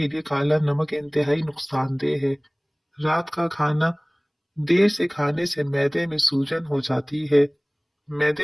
لیے کالا نمک انتہائی نقصان دہ ہے۔ رات کا کھانا دیر سے کھانے سے معدے میں سوجن ہو جاتی ہے۔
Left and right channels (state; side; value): identical; both; correlation 1.00